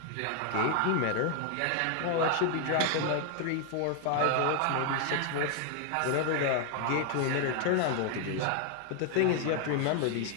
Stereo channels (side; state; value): both; different; correlation 0.00